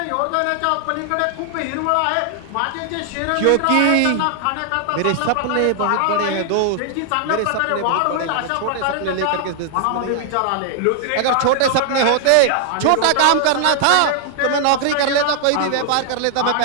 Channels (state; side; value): different; both; correlation 0.00